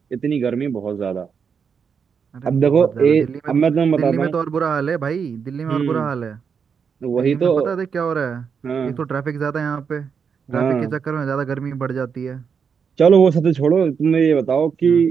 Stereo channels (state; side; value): quieter; left; 6.4 dB